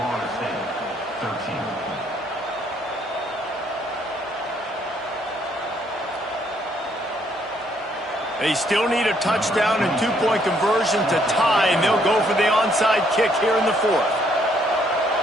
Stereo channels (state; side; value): normal; both; correlation 0.69